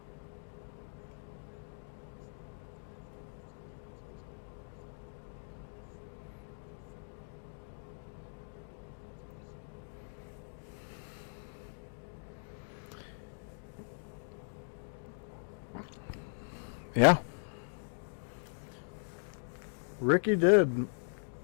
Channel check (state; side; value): silent; right; digital silence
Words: Yeah. Ricky did.